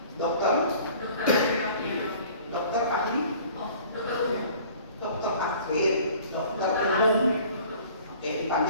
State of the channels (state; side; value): inverted; both; correlation -0.49